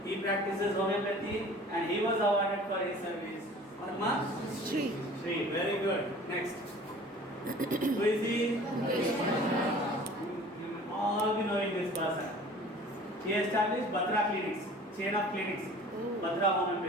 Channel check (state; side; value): normal; both; correlation 0.46